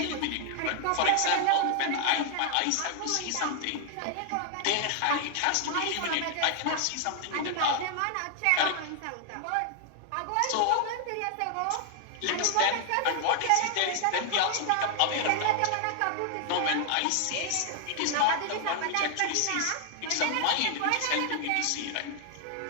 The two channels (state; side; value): different; both; correlation 0.00